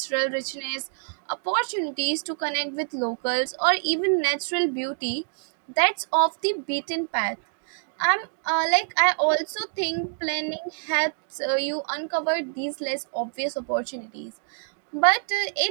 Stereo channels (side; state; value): left; silent; digital silence